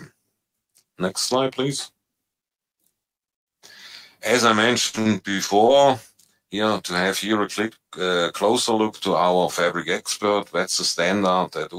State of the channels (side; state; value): both; identical; correlation 1.00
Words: Next slide, please. As I mentioned before, here to have here a closer look to our Fabric Expert. That's the standard at